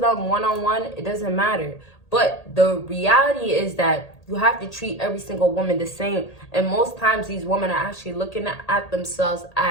them one-on-one, it doesn't matter. But the reality is that you have to treat every single woman the same. And most times these women are actually looking at themselves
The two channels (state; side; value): late; right; 1.8 ms